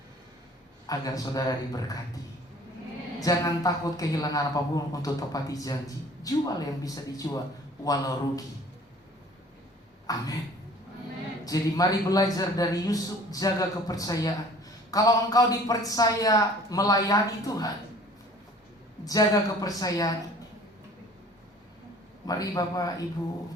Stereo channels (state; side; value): normal; both; correlation 0.50